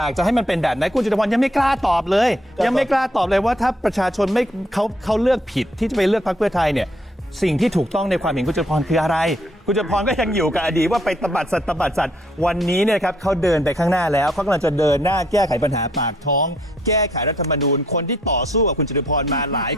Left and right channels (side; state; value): both; normal; correlation 0.68